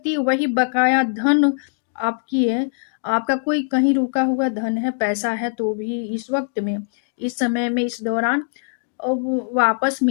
है। वही बकाया धन आपकी है, आपका कोई कहीं रुका हुआ धन है पैसा है तो भी इस वक्त में इस समय में इस दौरान वो वापस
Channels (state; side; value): silent; right; digital silence